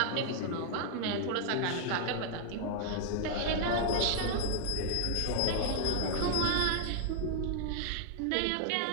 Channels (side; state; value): both; different; correlation 0.00